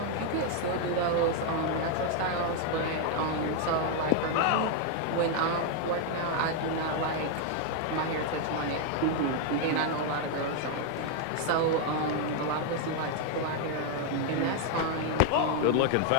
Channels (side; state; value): both; different; correlation 0.00